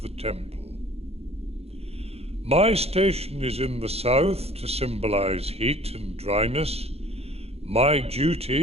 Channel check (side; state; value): left; late; 0.29 ms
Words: the temple. My station is in the south to symbolize heat and dryness. My